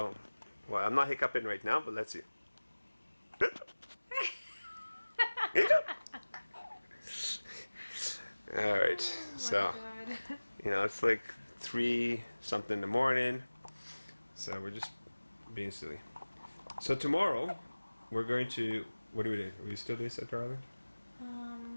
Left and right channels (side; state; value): both; inverted; correlation -1.00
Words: well, I'm not hiccuping right now, but let's see. All right, so you know it's like 3 something in the morning, so we're just being silly. So tomorrow we're going to, what do we do? Are we still doing Center Island?